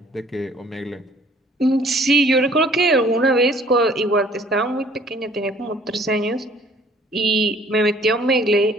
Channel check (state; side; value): normal; both; correlation 0.56